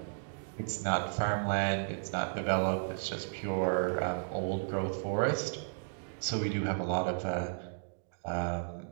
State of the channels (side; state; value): left; silent; digital silence